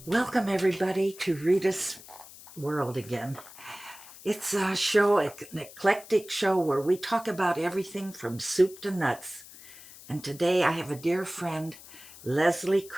Welcome, everybody, to Reita's World again. It's a show, an eclectic show where we talk about everything from soup to nuts. And today I have a dear friend, Leslee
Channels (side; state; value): left; noise; hiss, 18 dB below the sound